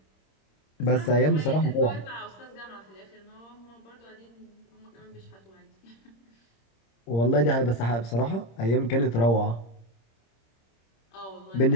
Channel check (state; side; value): late; right; 26 ms